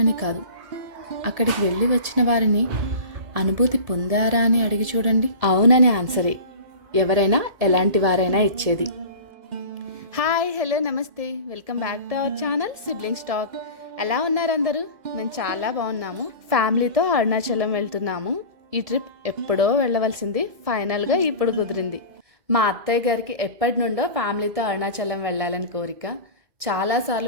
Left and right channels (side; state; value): left; late; 1.7 ms